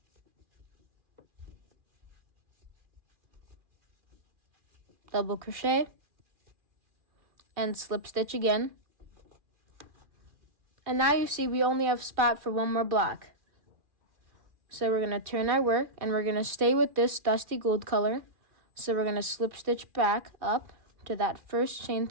Double crochet and slip stitch again. And now you see we only have spot for 1 more block. So we're going to turn our work and we're going to stay with this dusty gold color. So we're going to slip stitch back up to that first chain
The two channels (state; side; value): late; left; 2.4 ms